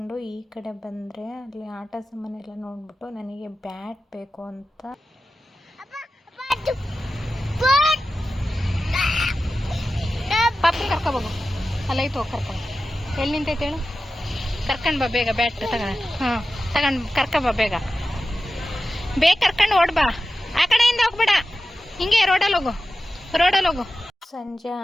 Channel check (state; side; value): normal; both; correlation 0.93